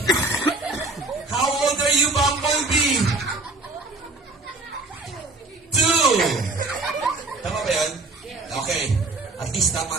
How old are you, Bumblebee? 2. Tama ba yun? Okay. At least tama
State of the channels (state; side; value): quieter; left; 3.2 dB